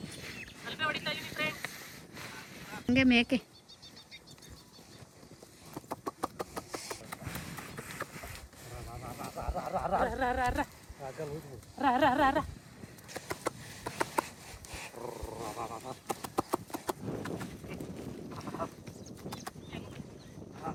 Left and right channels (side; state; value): both; identical; correlation 1.00